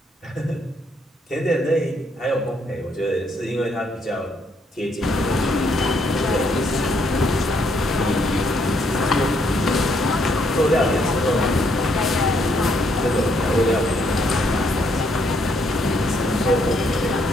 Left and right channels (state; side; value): normal; both; correlation 0.71